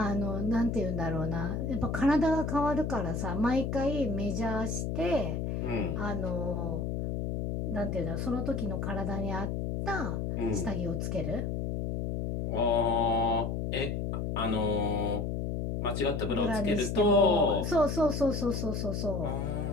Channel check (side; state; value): left; noise; hum, 2 dB below the sound